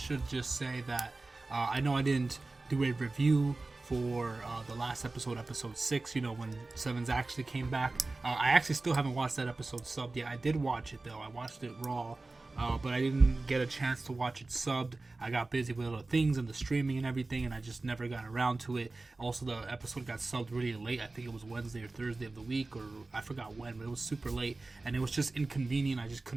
just say that I know I didn't do a review for the last episode, episode 6, you know, when 7s actually came back. I actually still haven't watched that episode subbed yet. I did watch it though, I watched it raw. But I didn't get a chance to watch it subbed. I got busy with other things and the streaming and everything, and I just never got around to it. Also, the episode got subbed really late. I think it was Wednesday or Thursday of the week, or I forgot when, but it was super late, and it was just inconvenient. I just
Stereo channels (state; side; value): quieter; left; 3.3 dB